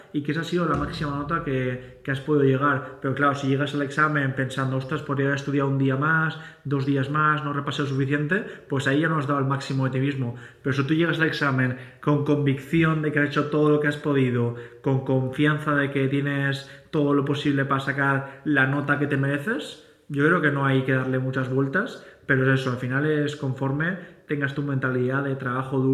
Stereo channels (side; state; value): both; identical; correlation 1.00